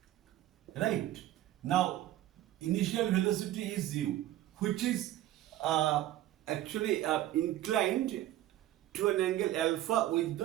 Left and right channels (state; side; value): quieter; left; 13.9 dB